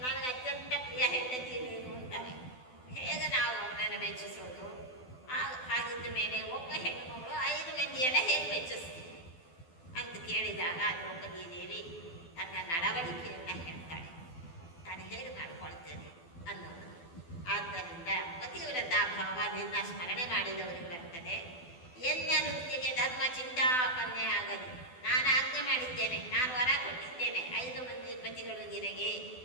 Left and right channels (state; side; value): late; right; 12 ms